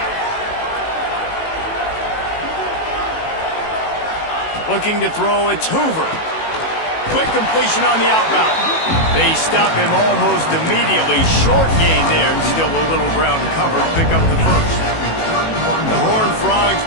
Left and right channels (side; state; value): right; late; 18 ms